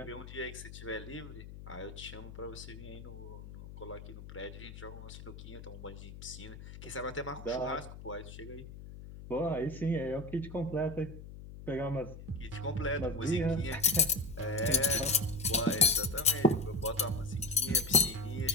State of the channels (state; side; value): noise; left; hum, 13 dB below the sound